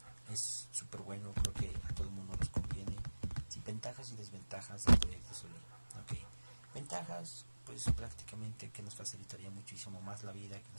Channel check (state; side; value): inverted; both; correlation -1.00